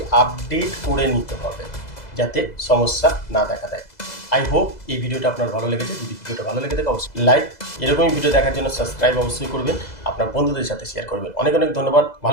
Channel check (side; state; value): right; late; 2.0 ms